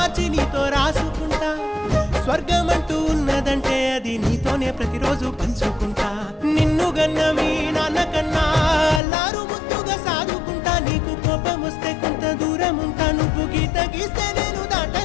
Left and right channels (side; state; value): right; drops out; at 9.0 s